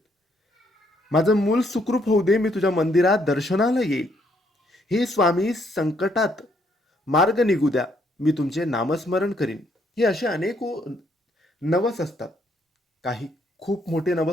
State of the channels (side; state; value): both; normal; correlation 0.70